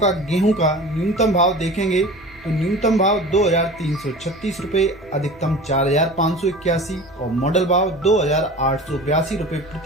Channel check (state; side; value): normal; both; correlation 0.38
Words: गेहूं का न्यूनतम भाव देखेंगे तो न्यूनतम भाव 2336 रुपए, अधिकतम 4581 और मॉडल भाव 2882 रुपए